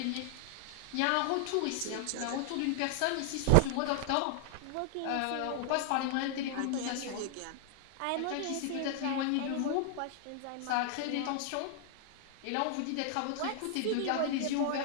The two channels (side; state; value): both; different; correlation -0.01